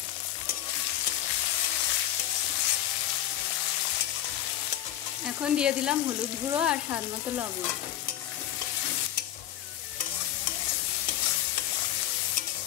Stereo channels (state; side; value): quieter; right; 12.4 dB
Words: এখন দিয়ে দিলাম হলুদ গুঁড়ো আর স্বাদ মতো লবণ।